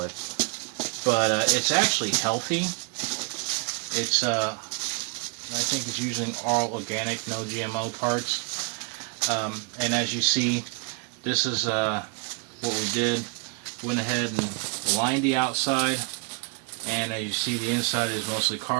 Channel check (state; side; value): quieter; left; 34.9 dB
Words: But it's actually healthy. It's I think it's using all organic, no GMO parts. And as you see, this is what we did. Went ahead and lined the outside. And as you see, the inside is mostly